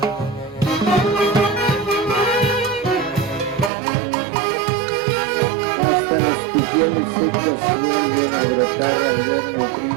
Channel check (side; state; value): left; drops out; at 3.7 s